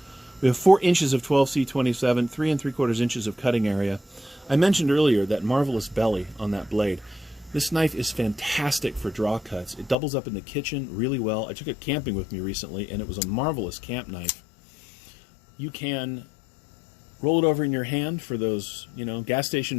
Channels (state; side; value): drops out; right; at 10.0 s